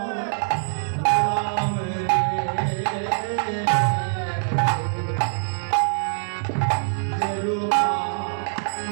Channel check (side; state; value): left; silent; 63 dB below the other